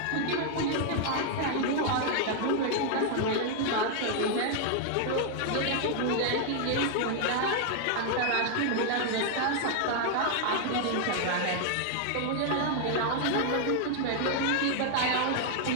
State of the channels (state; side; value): different; both; correlation 0.00